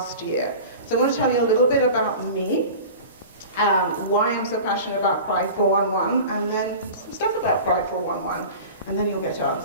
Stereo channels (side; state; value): both; inverted; correlation -0.36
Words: year. So I want to tell you a little bit about me, why I'm so passionate about Pride 411, and then some stuff about Pride 411, and then you'll get to